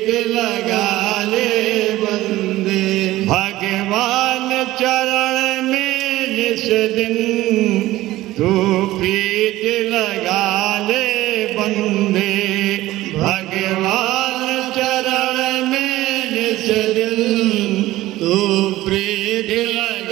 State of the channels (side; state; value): left; quieter; 16.6 dB